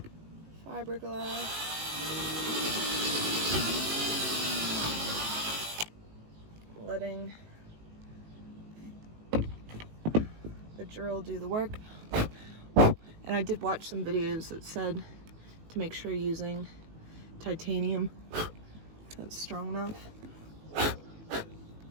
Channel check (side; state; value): left; late; 18 ms